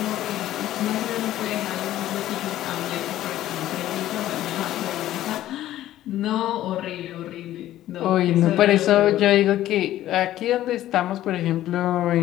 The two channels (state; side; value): quieter; right; 13.6 dB